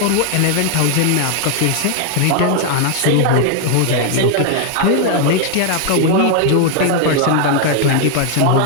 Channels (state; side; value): different; both; correlation 0.00